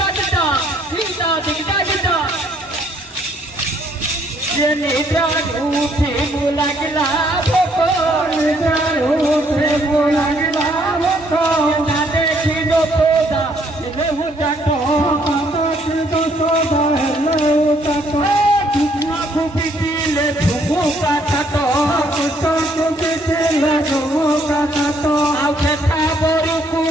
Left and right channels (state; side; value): normal; both; correlation 0.67